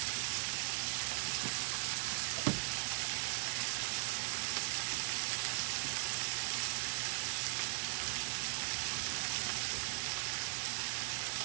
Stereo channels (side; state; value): left; silent; digital silence